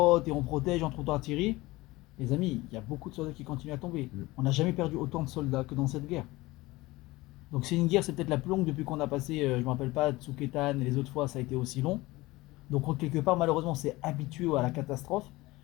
et on protège, on trouve d'artillerie. Les amis, il y a beaucoup de soldats qui continuent à tomber. On n'a jamais perdu autant de soldats que dans cette guerre. Donc c'est une guerre, c'est peut-être la plus longue depuis qu'on a passé, je ne me rappelle pas, Tsuketan et les autres fois, ça a été aussi long. Donc quelque part, malheureusement, on s'est habitué à la catastrophe.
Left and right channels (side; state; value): right; quieter; 20.2 dB